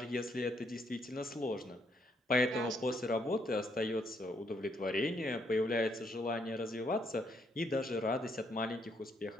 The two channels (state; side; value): normal; both; correlation 0.73